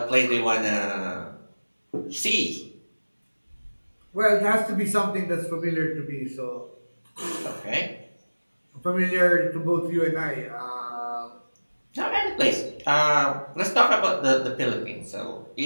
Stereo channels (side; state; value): both; inverted; correlation -1.00